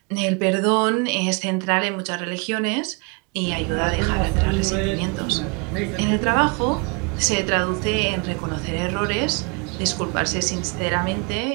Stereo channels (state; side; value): quieter; left; 31.7 dB